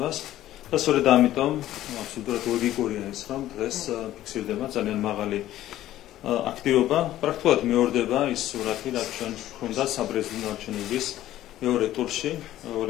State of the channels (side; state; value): right; quieter; 13.7 dB